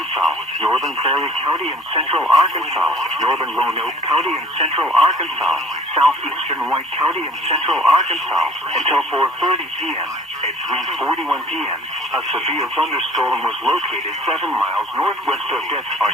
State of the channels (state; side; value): normal; both; correlation 0.50